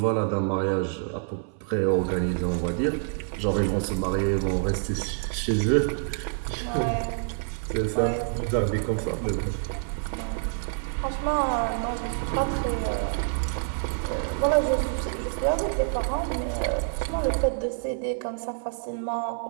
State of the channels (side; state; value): left; silent; 59 dB below the other